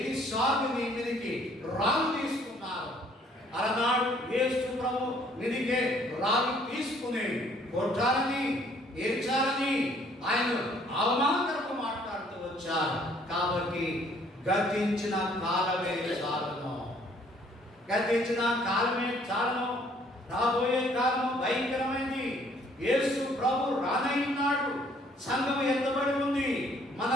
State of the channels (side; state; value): both; normal; correlation 0.61